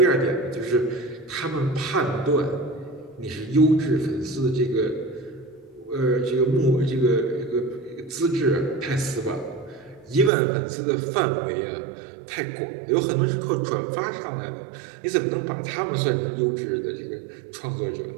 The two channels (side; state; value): left; drops out; at 10.3 s